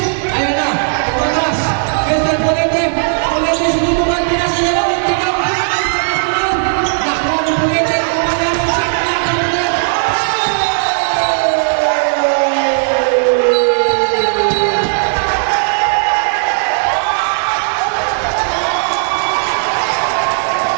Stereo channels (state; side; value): silent; left; digital silence